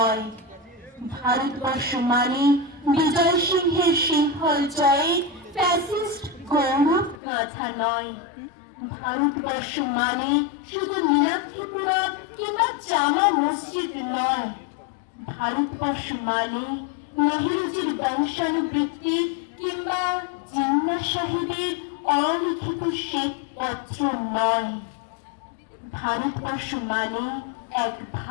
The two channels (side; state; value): right; drops out; at 7.2 s